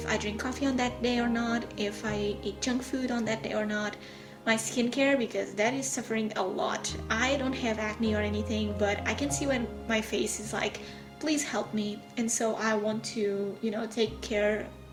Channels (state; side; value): identical; both; correlation 1.00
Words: I drink coffee on that day or not, if I eat junk food on that day or not, my skincare, because that is suffering a lot. I don't have acne or anything, but I can see when my face is like, please help me. And so I want to, take care